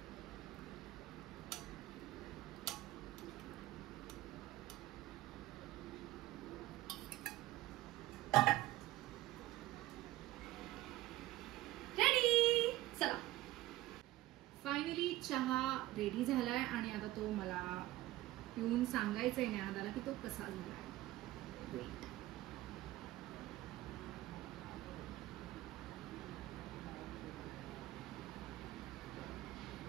रेडी. चला फायनली चहा रेडी झालाय आणि आता तो मला पिऊन सांगायचंय ज्ञानदाला की तो कसा झालाय. वेट.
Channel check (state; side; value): quieter; left; 16.4 dB